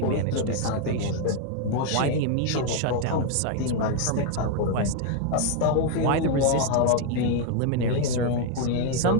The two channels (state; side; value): different; both; correlation 0.00